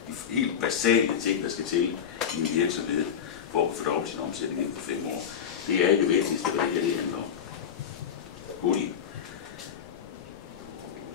de helt basale ting, der skal til i en virksomhed, for at fordoble sin omsætning inden for 5 år. Det er ikke det vigtigste, hvad det handler om. Goodie.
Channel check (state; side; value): quieter; right; 8.1 dB